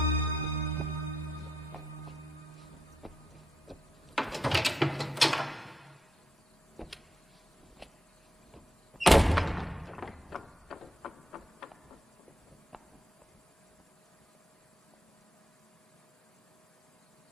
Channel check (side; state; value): both; normal; correlation 0.81